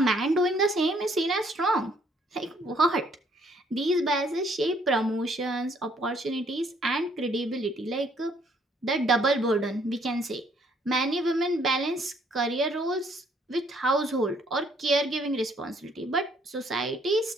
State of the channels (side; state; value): both; normal; correlation 0.65